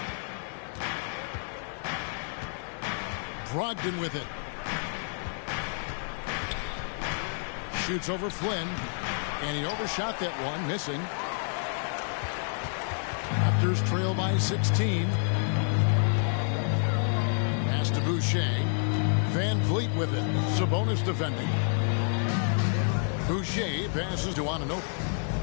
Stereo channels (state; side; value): silent; right; 58 dB below the other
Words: Brogdon with it. Shoots over Flynn. And he overshot that one, missing. Raptors trail by 16. Pass to Boucher. Van Vliet with it. Sabonis defending. Boucher passes to Anunoby.